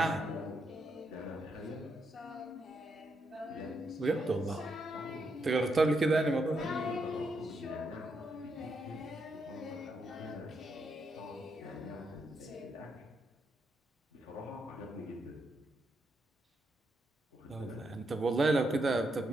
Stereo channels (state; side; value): normal; both; correlation 0.80